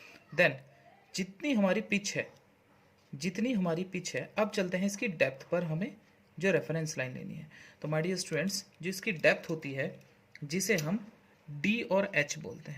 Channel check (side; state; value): both; identical; correlation 1.00